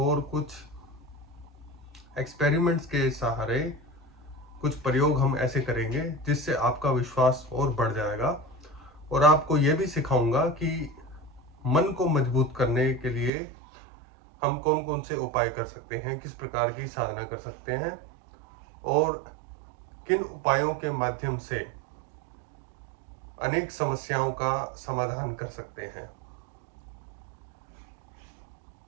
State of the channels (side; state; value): left; drops out; at 13.3 s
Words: कुछ एक्सपेरिमेंट्स के सहारे कुछ प्रयोग हम ऐसे करेंगे जिससे आपका विश्वास और बढ़ जाएगा। और आपको यह भी सिखाऊंगा कि मन को मजबूत करने के लिए हम कौन कौन से उपाय कर सकते हैं, किस प्रकार की साधना कर सकते हैं और किन उपायों के माध्यम से अनेक समस्याओं का समाधान कर सकते हैं।